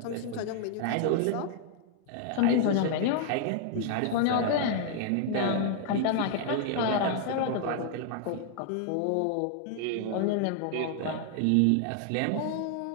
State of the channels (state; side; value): different; both; correlation 0.00